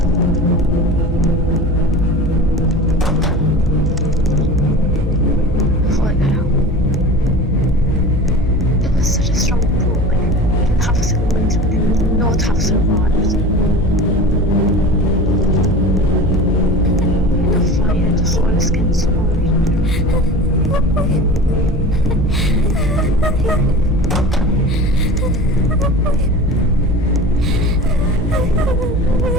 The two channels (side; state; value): both; normal; correlation 0.35